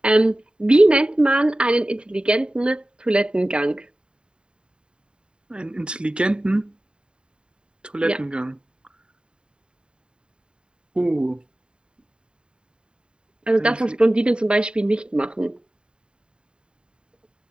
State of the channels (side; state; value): left; late; 0.050 ms